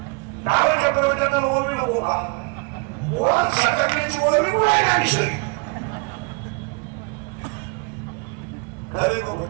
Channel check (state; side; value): quieter; left; 31.8 dB